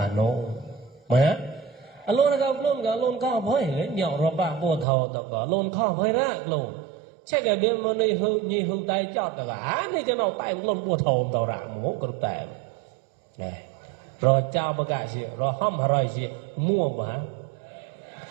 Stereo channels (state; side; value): drops out; left; at 4.9 s